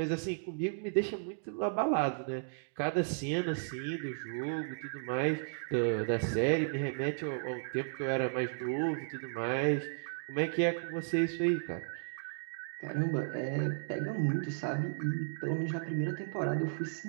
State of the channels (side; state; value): left; silent; digital silence